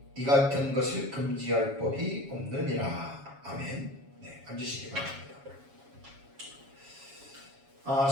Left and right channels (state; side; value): late; left; 7.3 ms